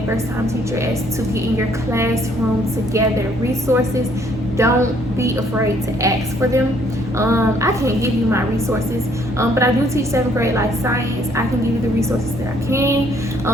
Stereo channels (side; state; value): both; normal; correlation 0.65